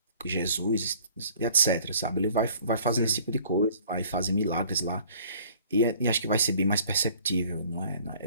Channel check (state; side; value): inverted; both; correlation -0.54